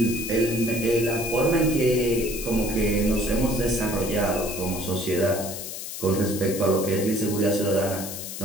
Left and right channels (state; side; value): noise; left; hiss, 8 dB below the sound